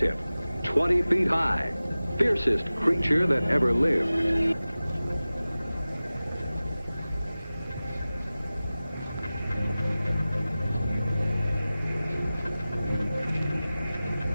20 feet high, fiercest creature that ever lived.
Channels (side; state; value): both; inverted; correlation -0.96